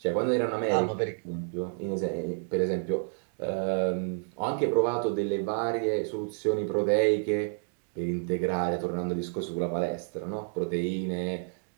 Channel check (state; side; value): silent; left; 58 dB below the other